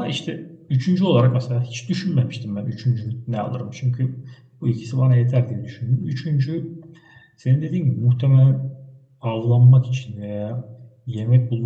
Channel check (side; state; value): both; identical; correlation 1.00